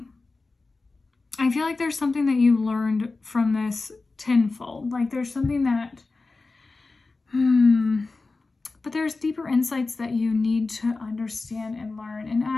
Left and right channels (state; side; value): quieter; right; 3.7 dB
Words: I feel like there's something that you learned from this tenfold. Like there's something that, but there's deeper insights that you need to understand and learn. And